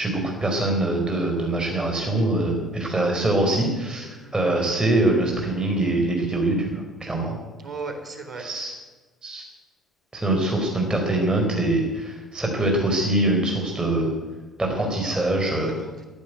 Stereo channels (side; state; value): both; normal; correlation 0.47